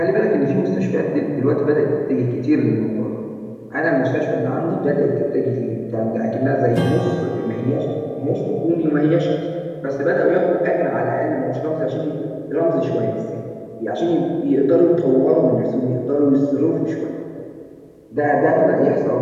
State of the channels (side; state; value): both; identical; correlation 1.00